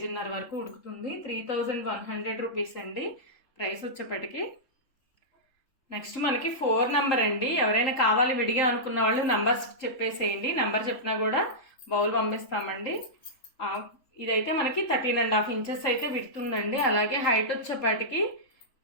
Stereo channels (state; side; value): late; right; 3.5 ms